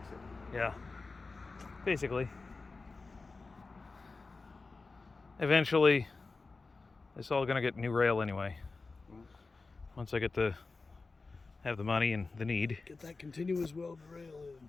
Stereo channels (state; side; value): quieter; right; 3.9 dB